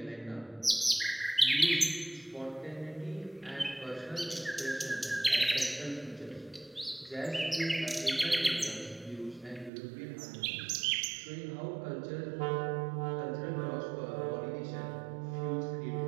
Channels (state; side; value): drops out; left; at 9.7 s